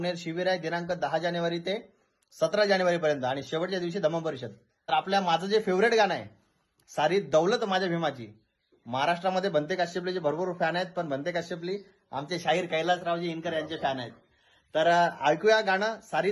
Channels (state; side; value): identical; both; correlation 1.00